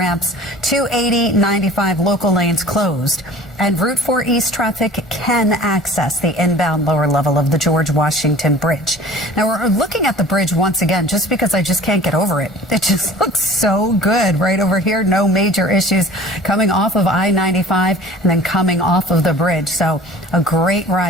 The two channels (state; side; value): normal; both; correlation 0.45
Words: 280, I-95 local lanes closed, and Route 4 East traffic can access the inbound lower level of the George Washington Bridge. Now, we're looking at the bridge once again just because I just can't get over it. It just looks so good right over here. No major issues coming off of I-95 and then coming off of the bridge. So a great